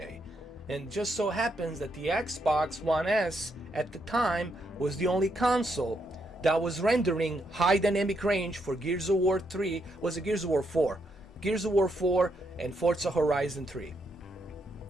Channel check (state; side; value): normal; both; correlation 0.78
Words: And just so happens that the Xbox One S at the time was the only console that was rendering high dynamic range for Gears of War 3, was it Gears of War 4? Gears of War 4 and Forza Horizon 3.